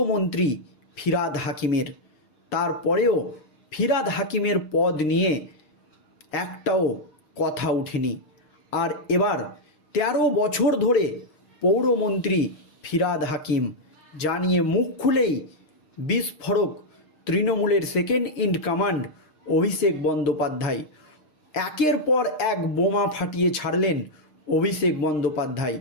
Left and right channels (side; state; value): right; late; 6.5 ms